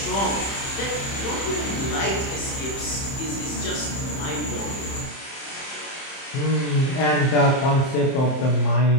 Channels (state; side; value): late; right; 30 ms